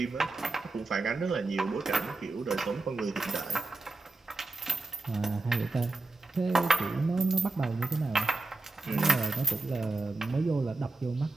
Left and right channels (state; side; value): quieter; left; 3.3 dB